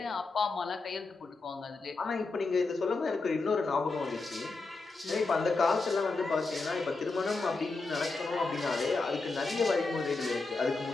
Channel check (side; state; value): right; quieter; 3.7 dB